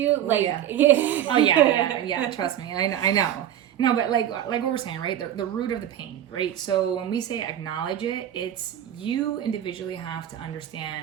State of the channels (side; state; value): left; quieter; 11.0 dB